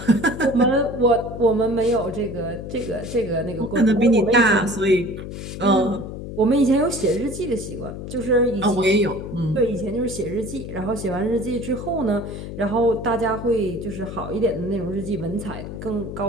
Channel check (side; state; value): left; noise; hum, 9 dB below the sound